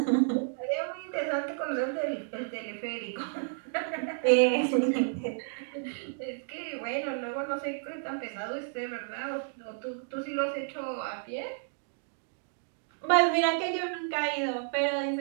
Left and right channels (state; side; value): silent; left; digital silence